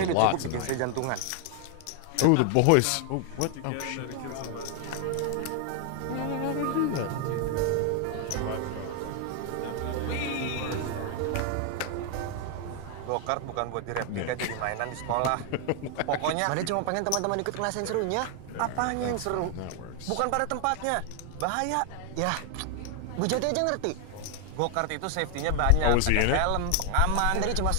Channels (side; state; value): both; different; correlation 0.00